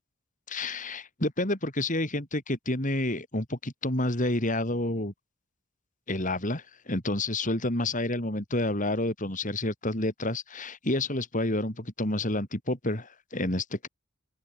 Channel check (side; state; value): both; normal; correlation 0.46